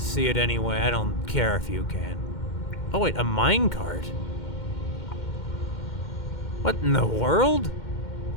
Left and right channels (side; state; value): right; late; 2.1 ms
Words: it anyway, I don't care if you can. Oh wait, a minecart? What in the world?